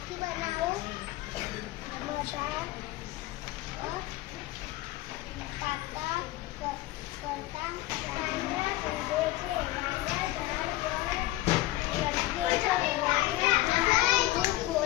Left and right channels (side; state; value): right; quieter; 17.5 dB